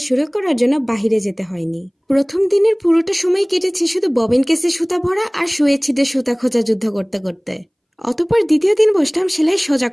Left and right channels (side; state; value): both; identical; correlation 1.00